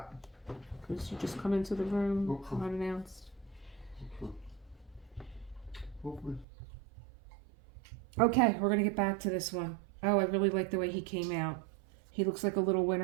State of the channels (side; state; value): left; drops out; at 6.5 s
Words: Because you just come into the room Okay. unannounced. Foofy. Okay, we're going to get back to this one. Oh, I really like the way he came out. He looks like a little